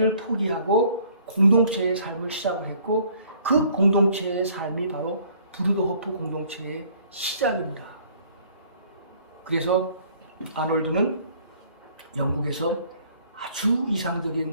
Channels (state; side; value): inverted; both; correlation -0.58